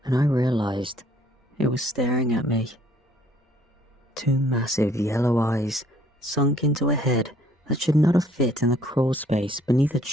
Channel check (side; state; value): both; normal; correlation 0.61